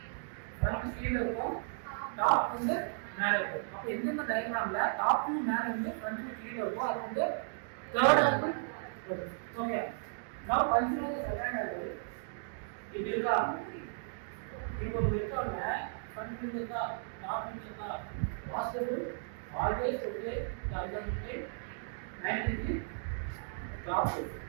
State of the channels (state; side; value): silent; left; digital silence